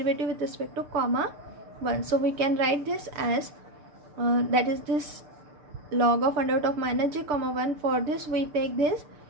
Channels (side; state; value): left; late; 7.0 ms